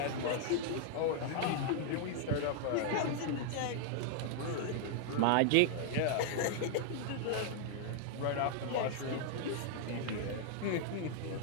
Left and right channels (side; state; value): both; different; correlation 0.00